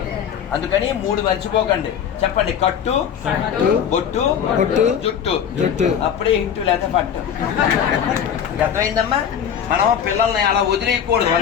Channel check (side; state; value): right; quieter; 8.4 dB